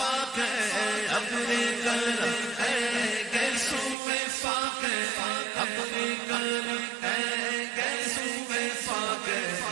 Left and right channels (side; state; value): left; drops out; at 4.0 s